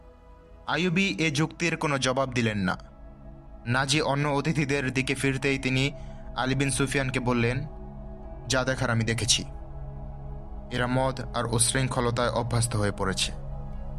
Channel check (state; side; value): identical; both; correlation 1.00